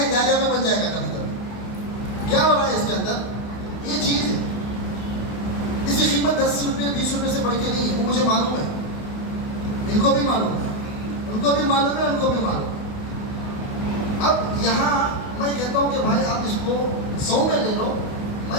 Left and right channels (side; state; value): right; late; 28 ms